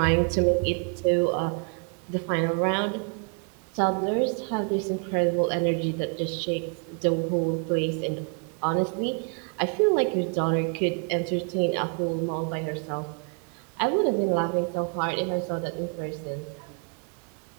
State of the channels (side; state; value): left; quieter; 39.6 dB